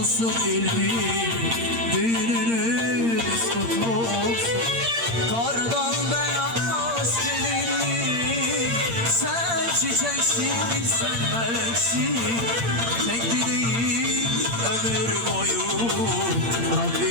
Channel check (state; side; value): late; left; 8.7 ms